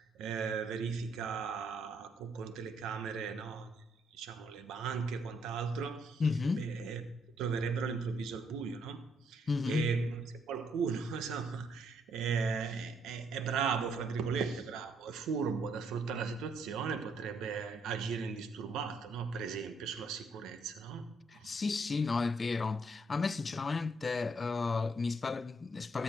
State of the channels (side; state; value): both; normal; correlation 0.71